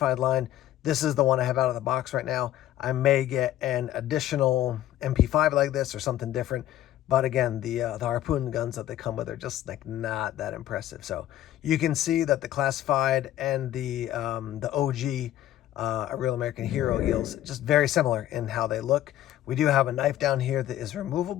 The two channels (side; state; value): right; quieter; 12.9 dB